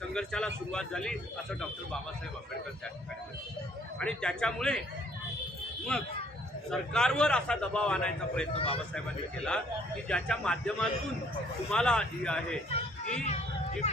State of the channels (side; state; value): both; normal; correlation 0.62